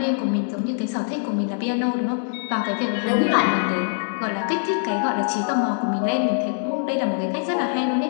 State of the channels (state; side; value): silent; right; 63 dB below the other